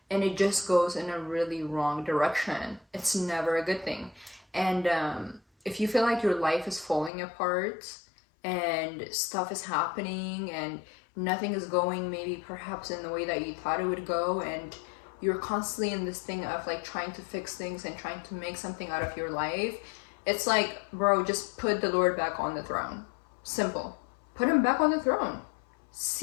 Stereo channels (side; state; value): right; drops out; at 7.1 s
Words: and it just goes in a really wrong direction. It's never a good thing. And if you feel like your life is falling apart and stuff is happening and nothing is going maybe perhaps in the way that you thought it would go, and you're constantly in this thing of like trying to fix things and trying to make something out of your life, it's like, bro, just put the Lord back on the throne. Simple. Put him back on the throne.